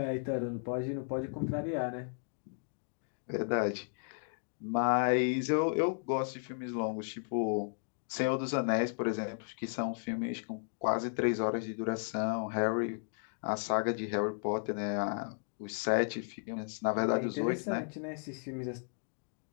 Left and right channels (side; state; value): right; silent; digital silence